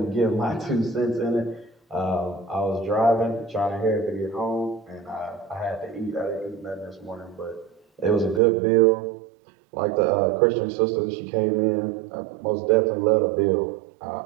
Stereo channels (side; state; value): left; drops out; at 8.4 s